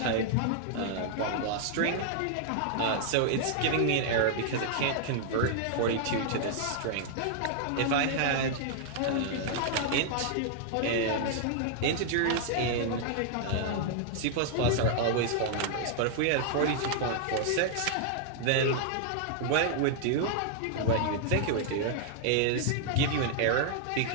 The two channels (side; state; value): both; different; correlation 0.00